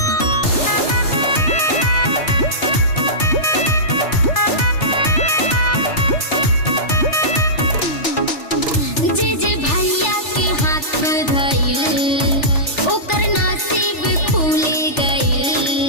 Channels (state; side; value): late; right; 3.4 ms